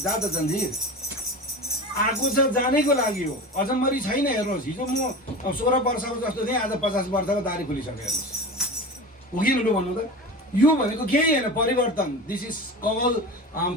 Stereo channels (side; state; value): both; normal; correlation 0.31